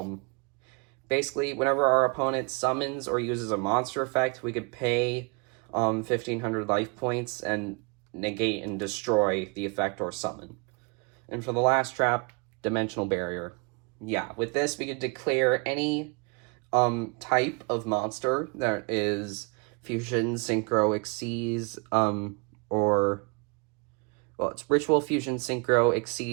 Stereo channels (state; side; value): quieter; left; 31.9 dB